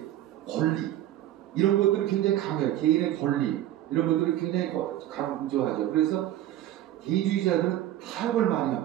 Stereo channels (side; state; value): left; quieter; 13.1 dB